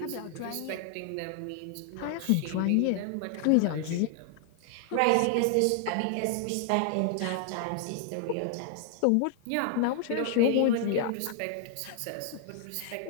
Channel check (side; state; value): both; different; correlation 0.00